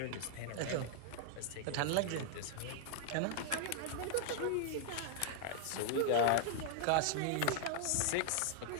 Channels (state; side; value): different; both; correlation 0.00